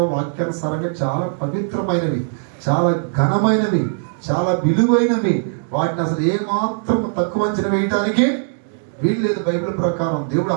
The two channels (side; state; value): left; silent; 64 dB below the other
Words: వాక్యానుసారంగా చాలా పవిత్రమైనవి, చాలా ఘనమైనవి, చాలా విలువైనవి. వాటిని అసలు ఏమాత్రం తక్కువ అంచనా వేయటానికి వీలు లేదు. బైబిల్ ప్రకారం దేవుడు